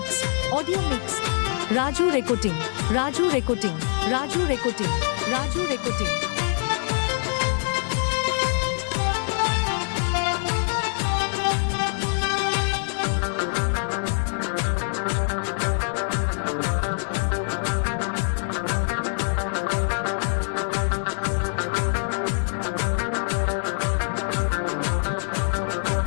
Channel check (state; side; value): silent; right; 60 dB below the other